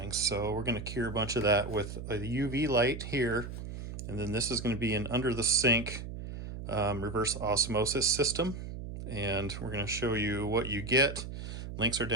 So we're going to cure a bunch of that with a UV light here. And then this is going to be an under the sink reverse osmosis system. And we're going to show you what you get. Links are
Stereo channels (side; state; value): right; noise; hum, 8 dB below the sound